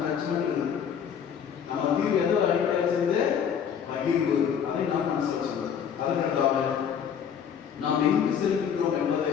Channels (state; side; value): quieter; right; 7.9 dB